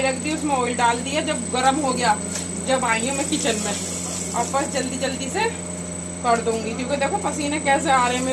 रख दी, उसमें ऑयल डाल दिया। जब गर्म हो गया, जब आई हूँ मैं किचन में, और बस जल्दी जल्दी से कर दूंगी, क्योंकि देखो पसीने कैसे आ रहे हैं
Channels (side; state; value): both; identical; correlation 1.00